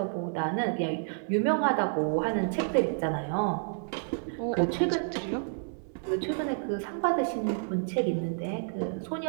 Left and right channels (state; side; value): silent; left; 58 dB below the other